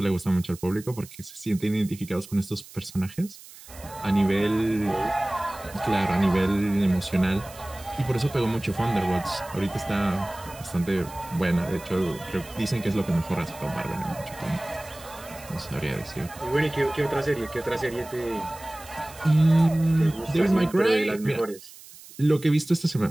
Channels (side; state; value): right; noise; hiss, 19 dB below the sound